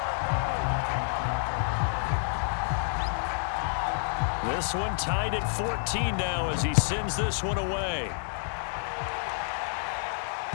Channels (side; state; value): right; silent; 59 dB below the other